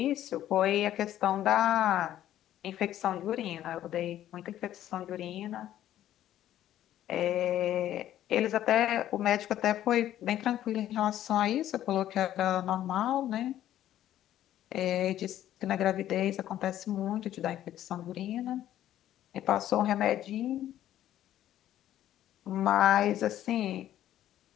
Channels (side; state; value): right; quieter; 12.3 dB